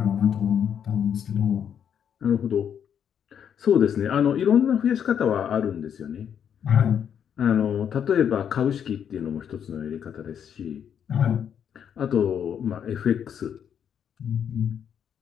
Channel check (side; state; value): right; quieter; 8.4 dB